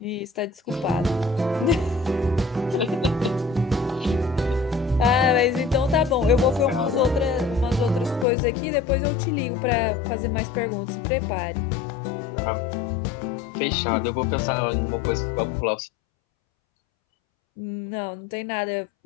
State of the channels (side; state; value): right; drops out; at 8.2 s